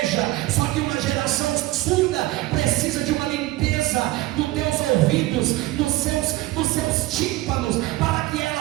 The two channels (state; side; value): quieter; left; 18.1 dB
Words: Só que uma geração surda precisa de uma limpeza nos teus ouvidos, nos seus tímpanos, para que